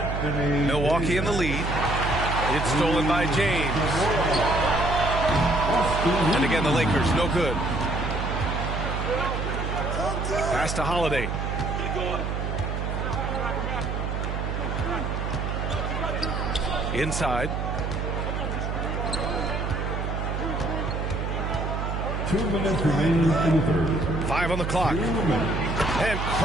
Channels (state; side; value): noise; right; hum, 2 dB below the sound